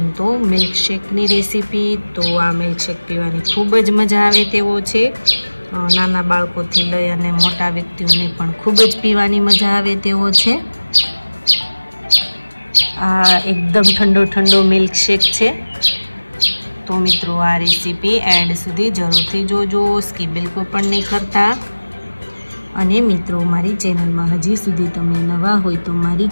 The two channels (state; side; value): inverted; both; correlation -1.00